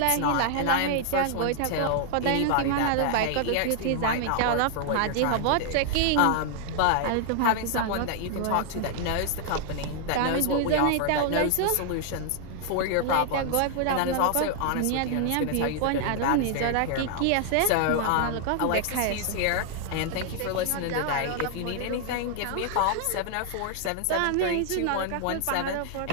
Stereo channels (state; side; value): different; both; correlation 0.00